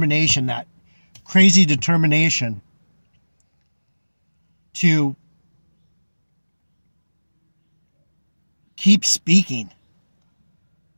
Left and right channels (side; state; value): both; inverted; correlation -1.00